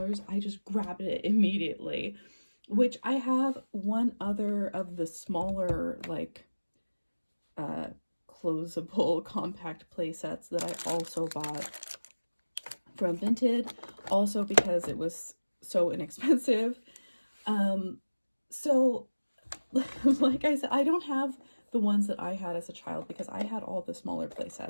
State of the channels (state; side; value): inverted; both; correlation -1.00